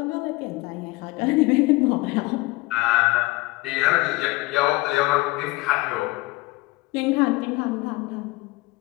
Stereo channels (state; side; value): quieter; right; 22.0 dB